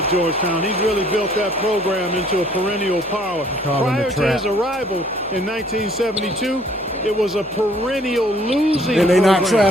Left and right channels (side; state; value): both; normal; correlation 0.59